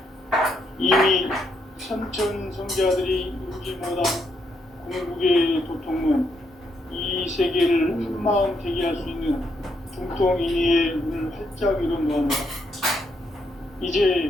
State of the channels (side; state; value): both; normal; correlation 0.77